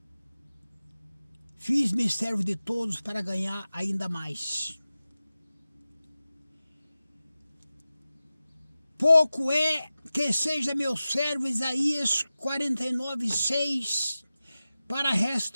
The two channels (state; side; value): inverted; both; correlation -0.95